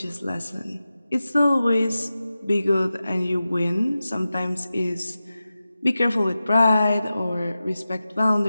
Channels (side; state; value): both; inverted; correlation -0.94